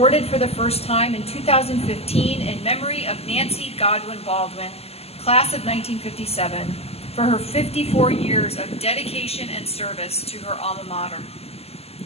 for the first time in 2015 in memory of Nancy Godwin Baldwin, Class of 1957, for her 54 years of dedication and service to her alma mater.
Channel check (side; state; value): right; late; 0.29 ms